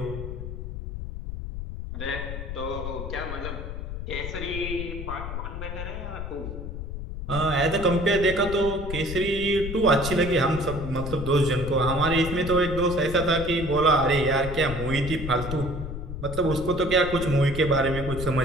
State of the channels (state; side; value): noise; left; rumble, 7 dB below the sound